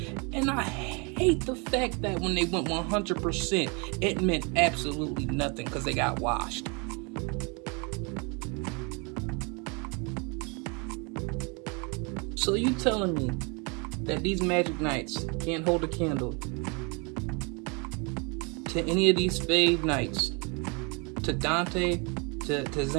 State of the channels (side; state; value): left; quieter; 32.0 dB